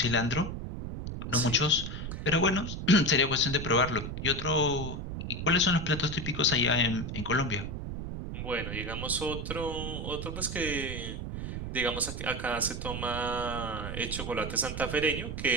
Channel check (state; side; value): noise; right; rumble, 6 dB below the sound